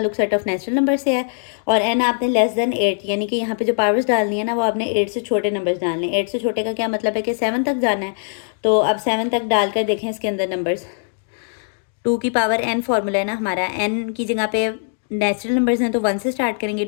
सेट ऑफ नेचुरल नंबर से है, और n आपने लेस देन 8, यानी कि यहाँ पे जो पावर्स डालनी है ना, वो आपने 8 से छोटे नंबर्स डालने हैं। 8 से छोटे का क्या मतलब है कि 7 तक जाना है। तो अब 7 तक डालकर देखें इसके अंदर नंबर्स। 2 की पावर n फॉर्मूला है ना हमारा, n की जगह पे नेचुरल नंबर्स हैं तो 1 से स्टार्ट करेंगे।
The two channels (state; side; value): silent; right; digital silence